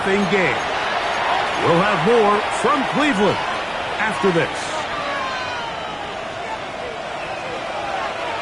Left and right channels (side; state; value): both; identical; correlation 1.00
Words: game. We'll have more from Cleveland after this.